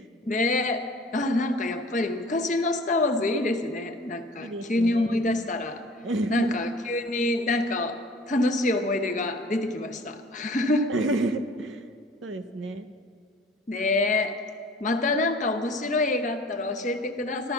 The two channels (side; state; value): both; normal; correlation 0.47